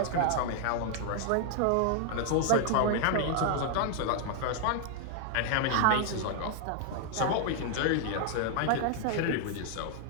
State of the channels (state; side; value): different; both; correlation 0.00